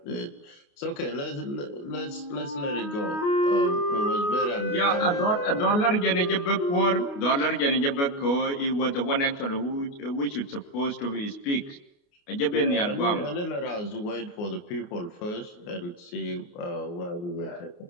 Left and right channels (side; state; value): right; late; 29 ms